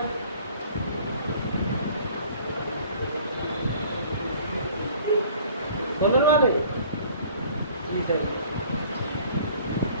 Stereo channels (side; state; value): both; inverted; correlation -0.52